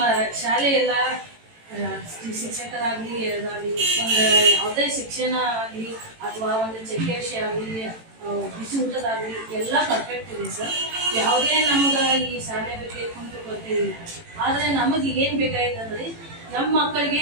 ಶಾಲೆಯೆಲ್ಲ ಶಿಕ್ಷಕರಾಗಲಿ ಇದಾಗಲಿ ಒಂದು ಯಾವುದೇ ಶಿಕ್ಷಣ ಆಗಲಿ ಅಥವಾ ಒಂದು ಚೆಕ್ಕೆ ವಿಷಯ ಆಗಲಿ ಬಿಸಿ ಊಟದಾಗಲಿ ಎಲ್ಲ ಪರ್ಫೆಕ್ಟ್ ಇದೆ ಸರ್. ಯಾವುದೇ ನಮ್ಗೆ ಈ ಶಾಲೆ ಬಗ್ಗೆ ಕುಂತು ಕೊಡ್ತೀವಿ. ಆದರೆ ನಮಗೆ ಏನು ಬೇಕಾಗಿದೆ ಅಂದರೆ ನಮ್ಮ ಮಕ್ಕಳಿಗೆ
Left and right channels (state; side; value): late; left; 18 ms